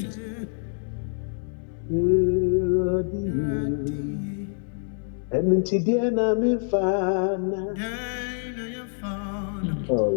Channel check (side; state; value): right; silent; 61 dB below the other